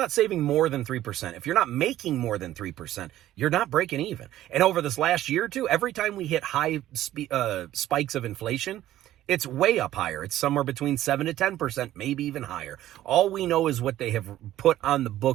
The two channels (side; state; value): left; quieter; 13.7 dB